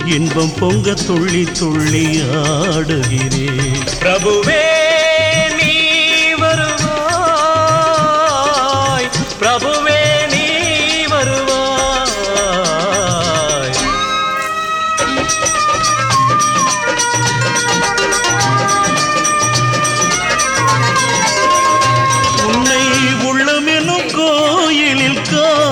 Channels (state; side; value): identical; both; correlation 1.00